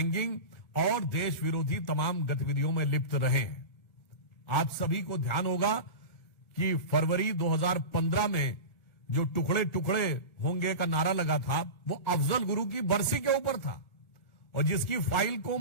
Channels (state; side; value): late; right; 1.5 ms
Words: और देश विरोधी तमाम गतिविधियों में लिप्त रहे हैं। आप सभी को ध्यान होगा कि फरवरी 2015 में जो टुकड़े टुकड़े होंगे का नारा लगा था, वो अफजल गुरु की बरसी के ऊपर था और जिसकी फाइल को